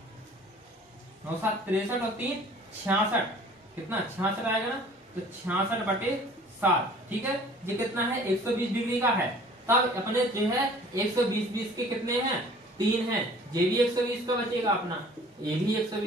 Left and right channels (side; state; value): both; normal; correlation 0.50